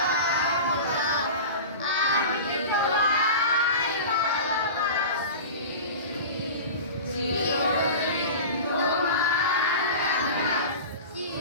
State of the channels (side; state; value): both; inverted; correlation -0.32